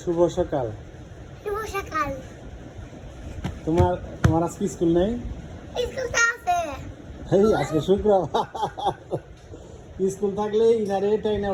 সকাল। শুভ সকাল। তোমার তোমার আজকে স্কুল নেই? স্কুল তো আছে। এই আজকে শুক্রবার। স্কুল থাকলে ইনারে টাইনে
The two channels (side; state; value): both; identical; correlation 1.00